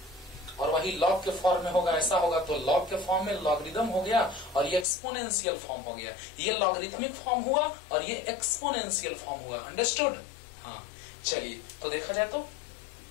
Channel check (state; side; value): drops out; right; at 4.9 s